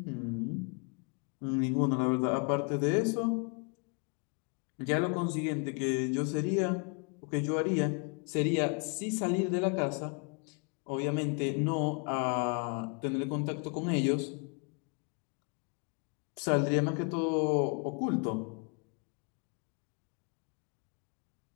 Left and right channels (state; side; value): quieter; right; 35.6 dB